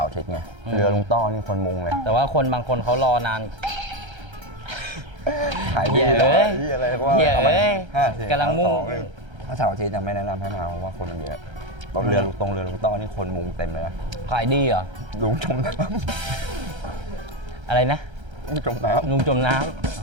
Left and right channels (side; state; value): left; late; 1.3 ms